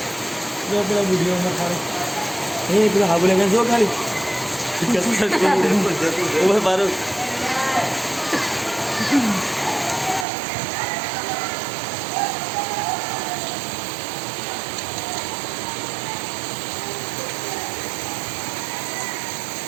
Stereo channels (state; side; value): drops out; left; at 10.2 s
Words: ये अपना वीडियो में खाली ये एक हाँ बोले कैसे हो खाली वो बारो